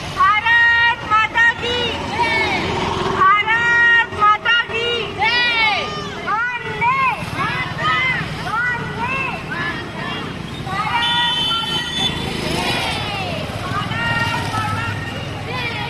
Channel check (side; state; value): both; identical; correlation 1.00